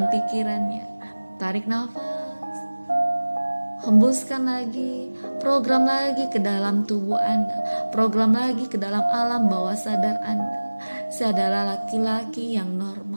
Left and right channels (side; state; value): both; inverted; correlation -1.00